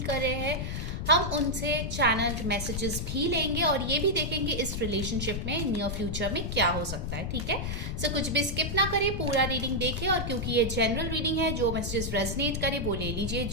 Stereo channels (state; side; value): noise; left; rumble, 3 dB below the sound